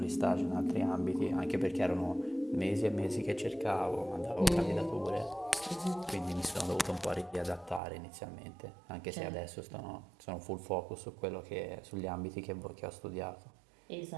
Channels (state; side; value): drops out; left; at 7.8 s